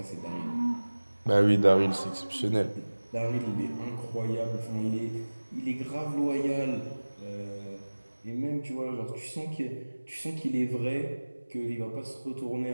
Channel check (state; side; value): inverted; both; correlation -1.00